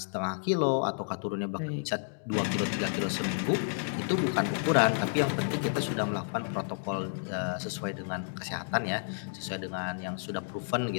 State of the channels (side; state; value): right; silent; digital silence